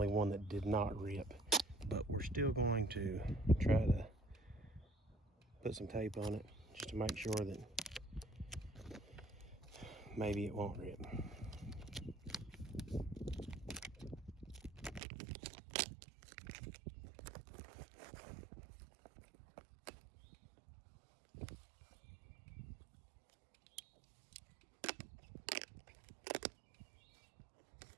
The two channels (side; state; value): left; drops out; at 15.0 s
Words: one that did not rip, but we're still going to try to put some tape on it just to make sure that maybe it won't rip.